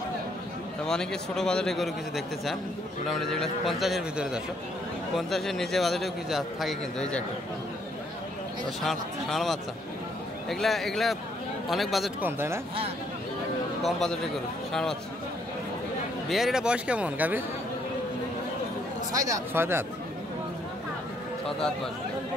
তবে অনেকে ছোটো বাজারে গরু কিছু দেখতে চান, মোটামুটি যেগুলো 50-এর ভিতরে দর্শক, 50-এর নিচে বাজারেও কিছু থাকে কিন্তু। এই যে একটা ষাঁড় বাচ্চা, এগুলা অনেক বাজেট কম, তাই না? কম বাজেটের গরু ষাঁড় বাচ্চা। বিয়ের এটা বয়স কেমন গাভীর? 6 দাঁত। 6 দাঁত বয়স।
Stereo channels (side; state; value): both; normal; correlation 0.69